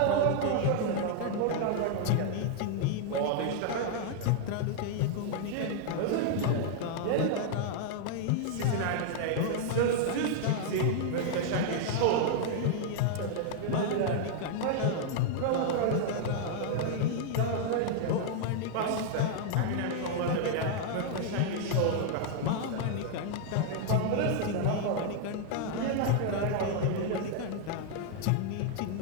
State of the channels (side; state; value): both; different; correlation 0.00